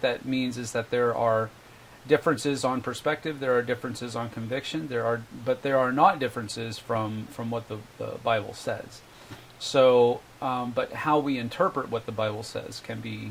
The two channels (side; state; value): both; identical; correlation 1.00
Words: that means is that there are differences on perspective, there are differences on conviction, but there are not differences from what the Bible says. So, but how we interpret what the Bible says can